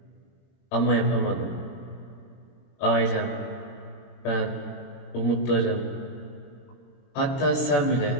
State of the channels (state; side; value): late; right; 22 ms